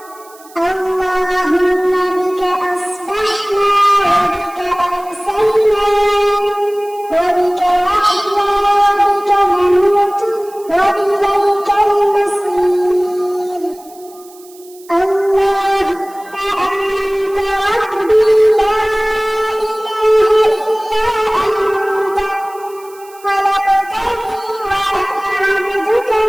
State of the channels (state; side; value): noise; right; hiss, 24 dB below the sound